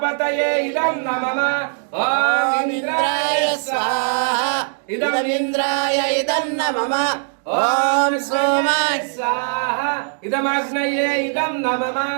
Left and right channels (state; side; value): silent; left; digital silence